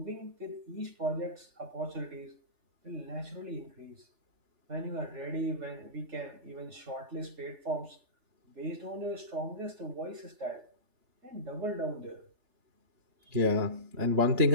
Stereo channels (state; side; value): late; left; 3.4 ms